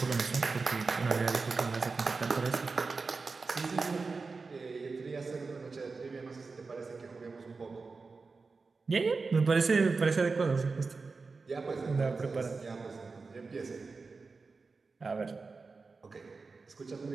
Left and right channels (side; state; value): left; quieter; 4.3 dB